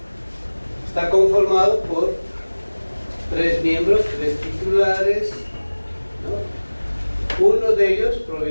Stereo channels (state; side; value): inverted; both; correlation -1.00